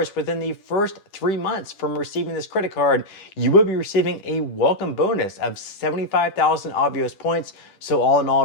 within the first 3 months from receiving this credit card, you will be receiving a welcome bonus of 75,000 avios points. So all in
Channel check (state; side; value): late; right; 10 ms